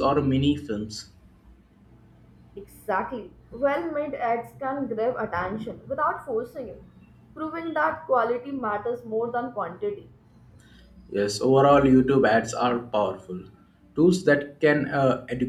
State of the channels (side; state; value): both; identical; correlation 1.00